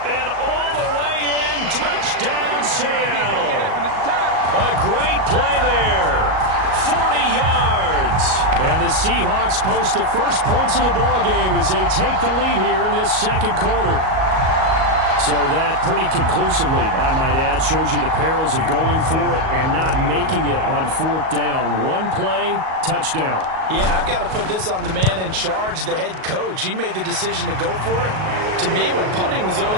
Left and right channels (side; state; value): left; late; 38 ms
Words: all the way in. Touchdown, Seattle. A great play there. 40 yards. And the Seahawks post the first points of the ballgame as they take the lead here in this second quarter. So that pretty conclusively, I might add, shows you the perils of going for it and not making it on fourth down. One play, touchdown. Yeah, and I've got to put this on the man in charge, the head coach. He made the decision to go for it. To me, when punting was the